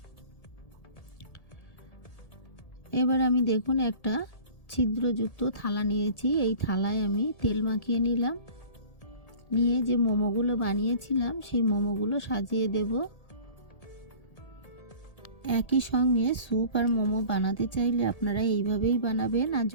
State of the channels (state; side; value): late; right; 1.8 ms